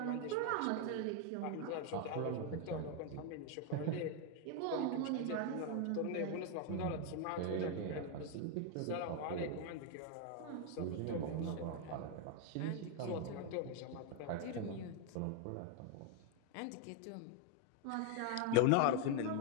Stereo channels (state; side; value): different; both; correlation 0.01